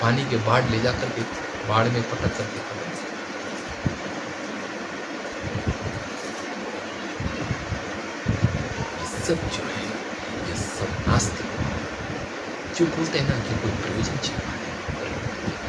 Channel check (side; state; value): both; identical; correlation 1.00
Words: पानी के बाढ़ ले जा करके बाढ़ में पटक कर देता। सब जो है ये सब नास्तिक जो बोलते हैं ना कि कोई प्रयोजन छिपा है,